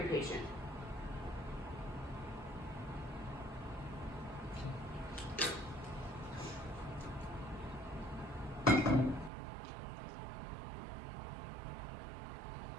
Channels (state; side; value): drops out; left; at 9.3 s